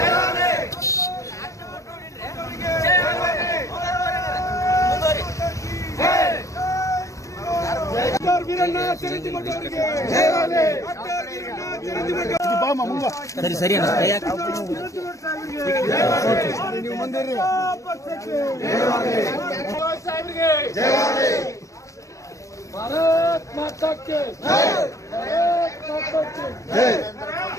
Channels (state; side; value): late; right; 0.15 ms